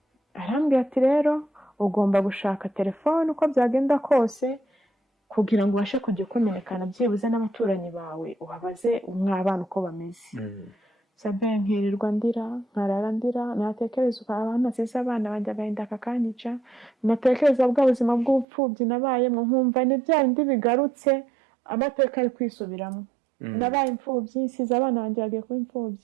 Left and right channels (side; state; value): left; drops out; at 18.4 s